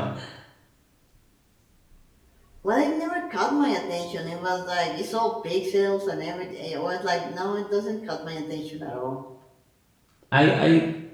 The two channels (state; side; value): identical; both; correlation 1.00